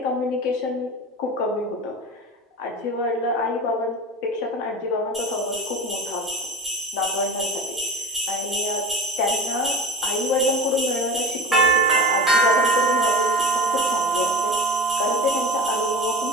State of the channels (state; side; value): normal; both; correlation 0.32